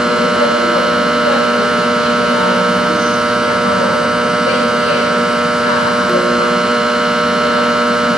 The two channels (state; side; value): normal; both; correlation 0.79